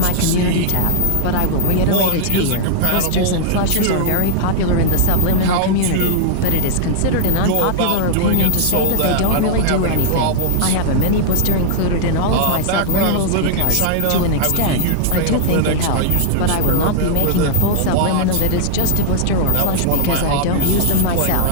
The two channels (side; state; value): both; different; correlation -0.01